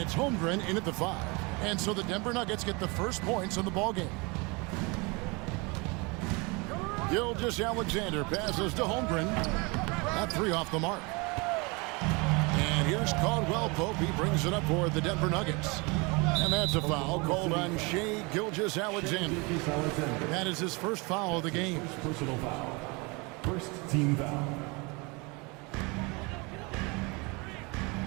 Holmgren in at the 5. And so the Denver Nuggets get the first points in the ballgame. Gilgeous-Alexander passes to Holmgren. That 3 off the mark. And here's Caldwell Pope. He brings it up for the Denver Nuggets. And that's a foul called on Shea Gilgeous-Alexander. That is his first foul of the game. Personal foul. First team foul.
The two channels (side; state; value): left; quieter; 28.0 dB